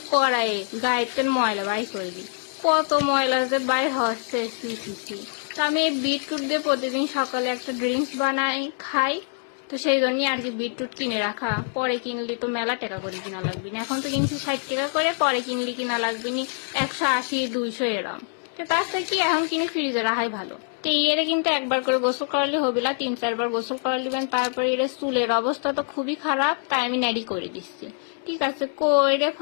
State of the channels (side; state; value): right; silent; 60 dB below the other